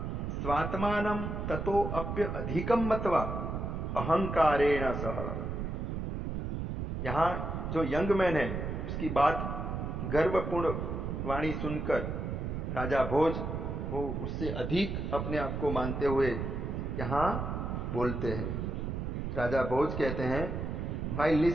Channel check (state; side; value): noise; right; rumble, 3 dB below the sound